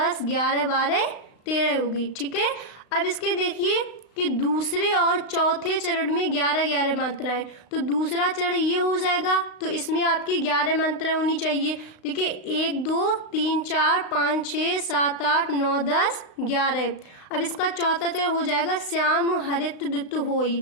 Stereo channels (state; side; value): late; right; 35 ms